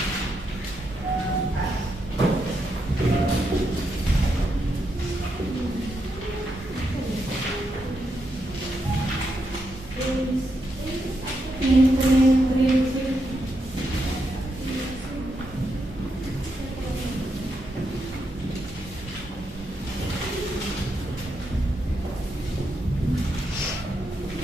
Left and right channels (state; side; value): normal; both; correlation 0.82